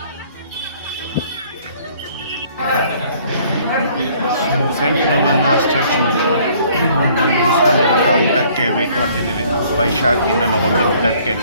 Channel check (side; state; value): both; inverted; correlation -0.59